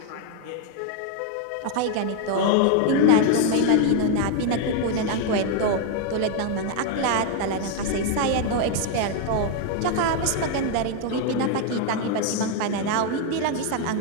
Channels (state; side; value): different; both; correlation 0.01